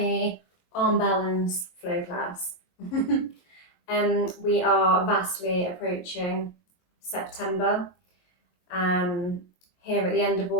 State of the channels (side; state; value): right; late; 23 ms